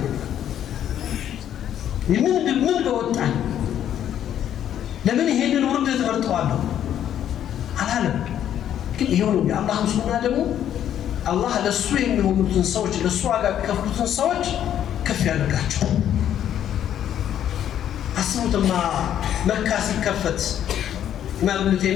ምን በወጣኝ ለምን ይሄንን ውርደት መርጠዋለሁ አላለም። ግን ይሄው ነው የአላህ ሱና ደግሞ አላህ ለሱ የሚሆኑትን ሰዎች ለሱ ዋጋ የሚከፍሉትን ሰዎች ከፍ ያደርጋቸው። አስቡትማ መካ ሲከፈት ኢማም ኢብኑ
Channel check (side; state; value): right; quieter; 10.4 dB